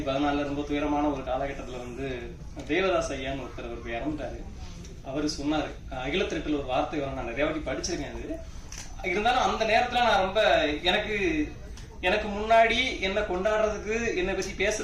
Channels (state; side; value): identical; both; correlation 1.00